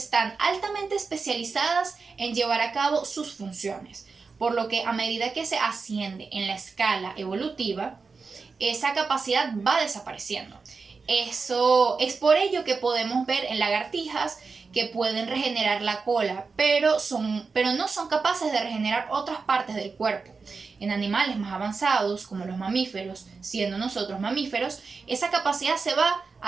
altamente especializadas en llevar a cabo sus funciones, por lo que a medida que se asciende en la escala evolutiva, esa capacidad va desapareciendo. Eso es por ello que podemos ver en lagartijas que pueden regenerar la cola, pero no son capaces de regenerar otras partes del cuerpo. En animales más avanzados, como los mamíferos, siendo nosotros mamíferos, esa capacidad se va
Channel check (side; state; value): left; quieter; 4.6 dB